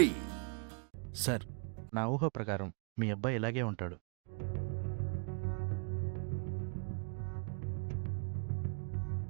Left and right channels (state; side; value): quieter; left; 37.7 dB